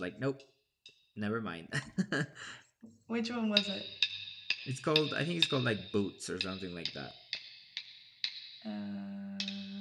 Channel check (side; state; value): both; identical; correlation 1.00